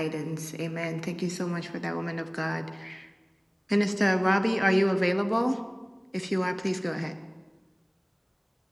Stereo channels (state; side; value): identical; both; correlation 1.00